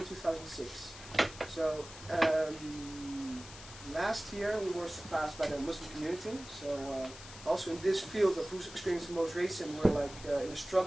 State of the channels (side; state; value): left; noise; hiss, 15 dB below the sound